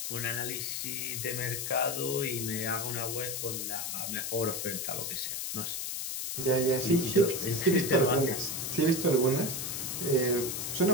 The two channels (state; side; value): noise; left; hiss, 3 dB below the sound